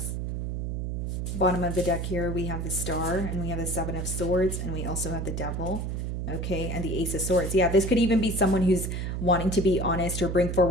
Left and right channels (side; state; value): right; noise; hum, 3 dB below the sound